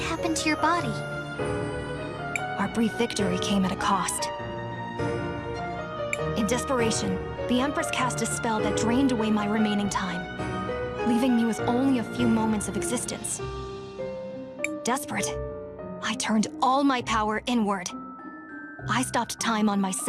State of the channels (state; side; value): identical; both; correlation 1.00